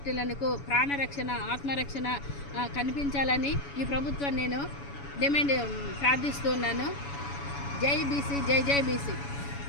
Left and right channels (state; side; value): late; right; 7.1 ms